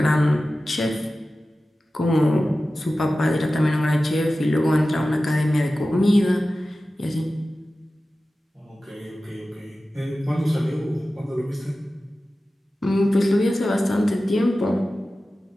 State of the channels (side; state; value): both; normal; correlation 0.95